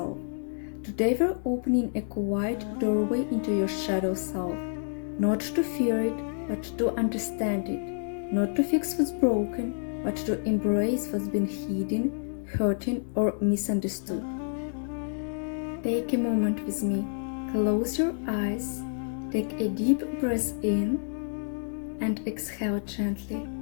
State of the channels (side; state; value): right; silent; 59 dB below the other